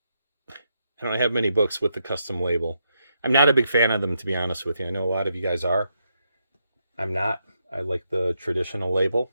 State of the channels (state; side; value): inverted; both; correlation -0.81